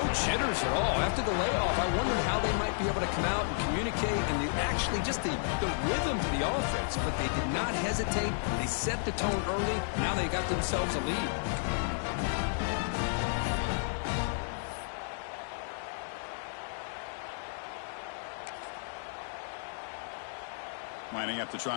jitters at all. After the layoff, I wondered how they might be able to come out and communicate and actually just the rhythm to the offense. But they did not hesitate. They set the tone early. Now they got themselves a lead. Lining up to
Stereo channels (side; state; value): right; silent; digital silence